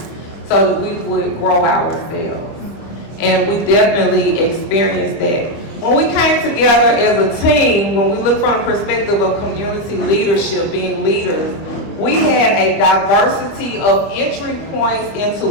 so that we would grow ourselves. And we definitely experienced that. When we came together as a team, when we look from the perspective of community leadership, being leaders, we had a diversity of entry points into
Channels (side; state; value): right; late; 25 ms